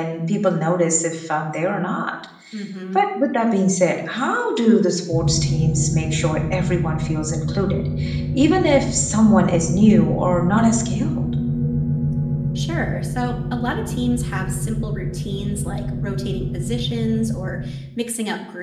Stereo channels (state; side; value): identical; both; correlation 1.00